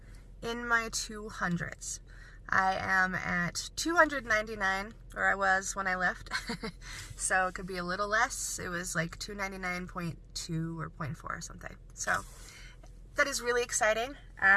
in my 200s. I am at 299, or I was when I left, so it could be a little less. It was like 299.2 or 0.4 or something. So that is really exciting.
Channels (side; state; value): both; identical; correlation 1.00